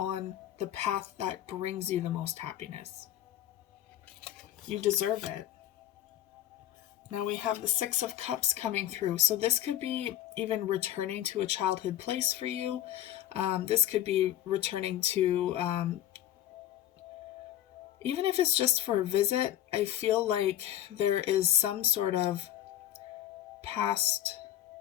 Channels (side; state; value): right; quieter; 12.4 dB